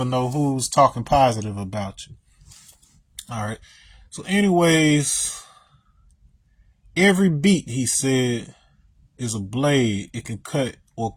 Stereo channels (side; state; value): both; identical; correlation 1.00